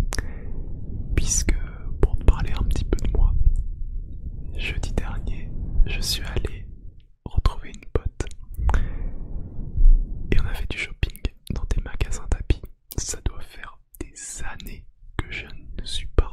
Puisque pour te parler un petit peu de moi, jeudi dernier, je suis allé retrouver une pote et on a fait du shopping dans des magasins d'habits. Ça doit faire des années que je ne suis pas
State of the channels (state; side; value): identical; both; correlation 1.00